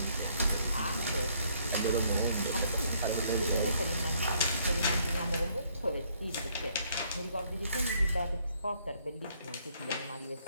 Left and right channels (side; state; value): both; inverted; correlation -0.67